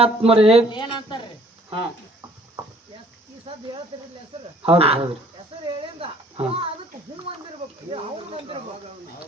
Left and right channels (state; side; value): normal; both; correlation 0.56